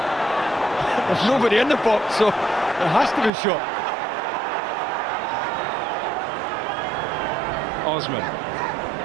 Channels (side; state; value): left; drops out; at 3.3 s